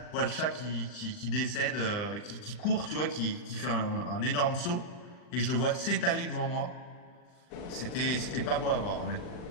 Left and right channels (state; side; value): late; right; 40 ms